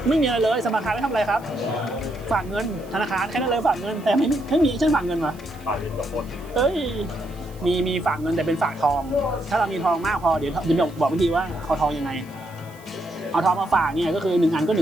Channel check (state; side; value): noise; right; hiss, 25 dB below the sound